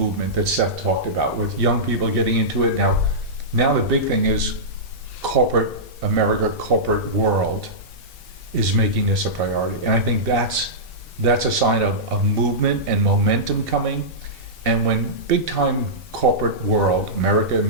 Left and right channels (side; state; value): left; late; 1.7 ms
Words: that Seth talked about with young people getting into it. Now the big thing is corporate America, corporate world is making this a priority. And I think that's a sign of movement and momentum coming. And when big time corporate world, America and